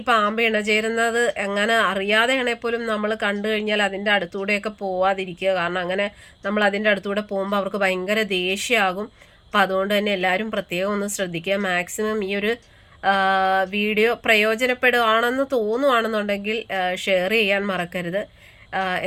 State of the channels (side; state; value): both; identical; correlation 1.00